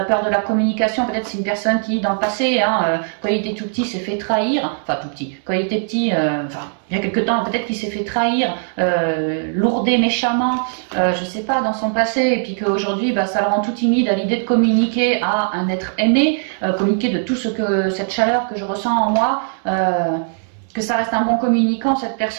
peur de la communication. Peut-être c'est une personne qui, dans le passé, hein, quand il était tout petit, s'est fait trahir. Enfin, tout petit. Quand il était petit, enfin, il y a quelque temps, peut-être qu'il s'est fait trahir, lourder méchamment, je sais pas, dans son passé. Et puis qu'aujourd'hui, bah, ça le rend tout timide à l'idée de communiquer à un être aimé, communiquer de tout ce que, cette chaleur que je ressens en moi. Que ça reste un bon communicant, cette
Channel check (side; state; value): left; silent; digital silence